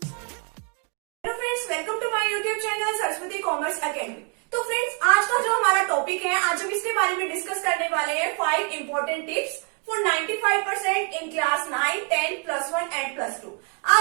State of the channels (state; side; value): quieter; left; 39.3 dB